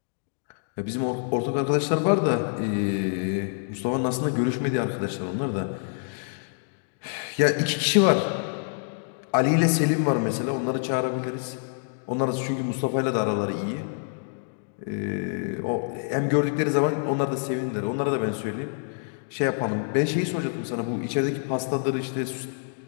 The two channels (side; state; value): right; silent; digital silence